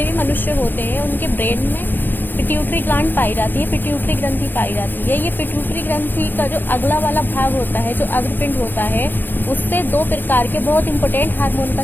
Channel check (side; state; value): right; late; 0.092 ms